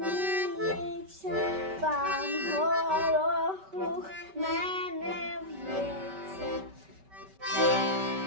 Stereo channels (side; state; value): left; late; 5.2 ms